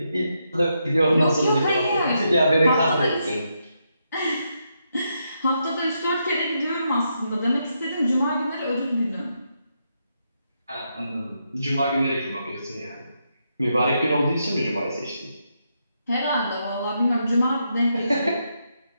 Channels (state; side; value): inverted; both; correlation -0.81